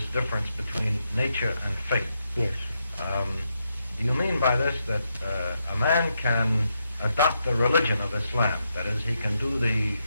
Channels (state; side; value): inverted; both; correlation -0.82